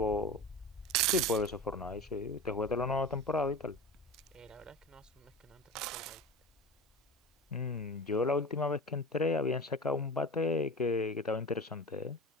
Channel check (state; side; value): normal; both; correlation 0.32